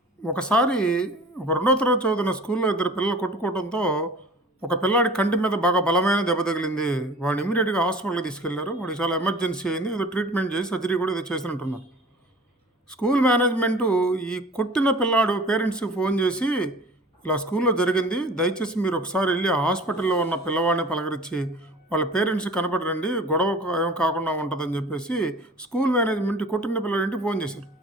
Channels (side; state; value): both; normal; correlation 0.43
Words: ఒకసారి ఒక రెండో తరగతి చదువుతున్న స్కూల్లో ఇద్దరు పిల్లలు కొట్టుకోవడంతో ఒక పిల్లాడి కంటి మీద బాగా బలమైన దెబ్బ తగిలింది. వాడిని ఇమీడియట్గా హాస్పిటల్కి తీసుకెళ్లారు. వాడికి చాలా ఎమర్జెన్సీ అయింది. ఏదో ట్రీట్మెంట్ చేసి సర్జరీ కూడా ఏదో చేసినట్టున్నారు. స్కూల్ మేనేజ్మెంటు ఈ కొట్టిన పిల్లాడు పేరెంట్స్కి ఫోన్ చేసి ఇలా స్కూల్లో జరిగింది, దయచేసి మీరు ఒకసారి వెళ్ళి ఆ హాస్పిటల్లో ఉన్న పిల్లవాడిని పలకరించి వాళ్ళ పేరెంట్స్ కనపడరండి, గొడవ ఏం కాకుండా ఉంటుందని చెప్పేసి స్కూల్ మేనేజ్మెంట్ ఈ కొట్టిన పిల్లాడింటికి ఫోన్ చేశారు.